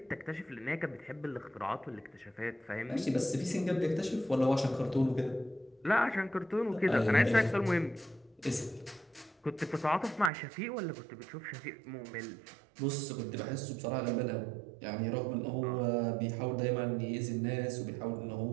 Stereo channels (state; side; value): drops out; left; at 10.3 s